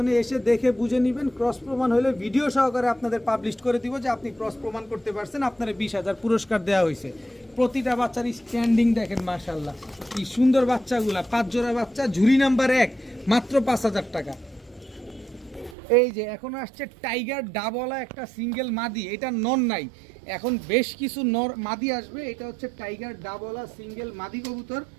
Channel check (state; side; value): drops out; left; at 15.8 s